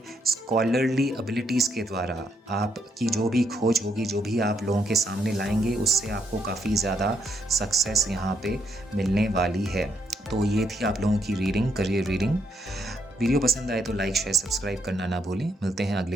स्कॉलरली एबिलिटीज़ के द्वारा, आपकी जो भी खोज होगी, जो भी आप लोगों के सामने लाएंगे, उससे आपको काफ़ी ज़्यादा सक्सेस यहाँ पे मिलने वाली है। तो ये थी आप लोगों की रीडिंग, करियर रीडिंग। वीडियो पसंद आए तो लाइक शेयर सब्सक्राइब करना ना भूलें। मिलते हैं अगले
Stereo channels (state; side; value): normal; both; correlation 0.75